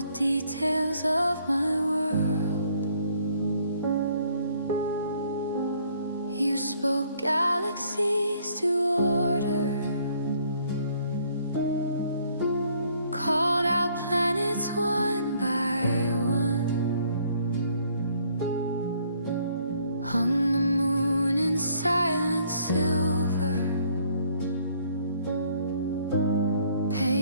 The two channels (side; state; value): both; inverted; correlation -0.63